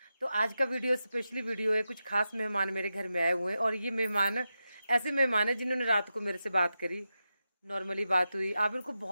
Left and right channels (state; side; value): inverted; both; correlation -0.90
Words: तो आज का वीडियो स्पेशली वीडियो है। कुछ खास मेहमान मेरे घर में आए हुए हैं और ये मेहमान ऐसे मेहमान हैं जिन्होंने रात को मेरे से बात करी। नॉर्मली बात हुई, आप इनको